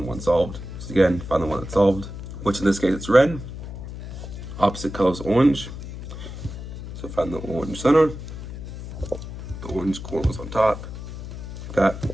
1 solved. So again, find the one that's solved, which in this case it's red, opposite color is orange. So find the orange center, the orange corners on top, like that.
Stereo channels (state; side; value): noise; left; hum, 9 dB below the sound